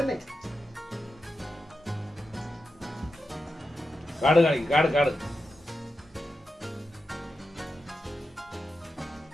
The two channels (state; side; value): normal; both; correlation 0.90